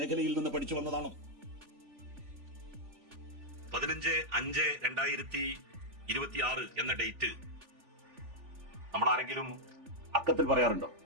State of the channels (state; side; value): late; left; 3.4 ms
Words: നിന്ന് പഠിച്ചു വന്നതാണ്. 15/5/2026 എന്ന ഡേറ്റ് നമ്മളാരെങ്കിലും അക്കത്തിൽ പറയാറുണ്ടോ?